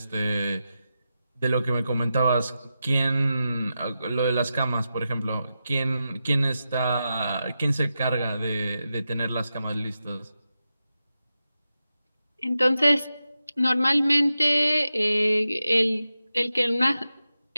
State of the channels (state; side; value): inverted; both; correlation -0.90